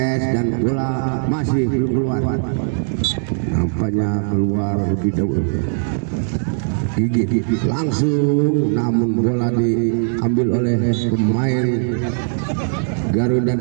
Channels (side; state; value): left; silent; digital silence